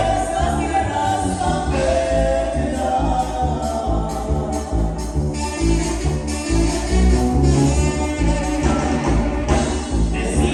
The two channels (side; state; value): both; identical; correlation 1.00